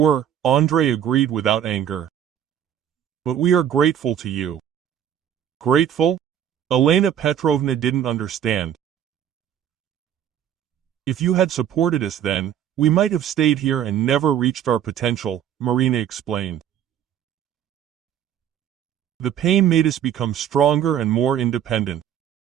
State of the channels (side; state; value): left; quieter; 9.8 dB